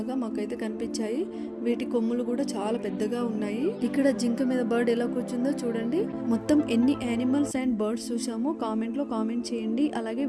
మాకైతే కనిపించాయి. వీటి కొమ్ములు కూడా చాలా పెద్దగా ఉన్నాయి. ఇక్కడ జింక మీద బర్డ్ ఎలా కూర్చుందో చూడండి. మొత్తం ఎన్ని యానిమల్స్ అండ్ బర్డ్స్ చూసామో కామెంట్ లో కామెంట్ చేయండి. అలాగే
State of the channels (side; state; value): both; identical; correlation 1.00